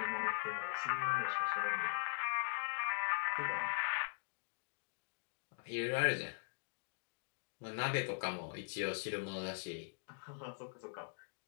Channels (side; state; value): right; silent; digital silence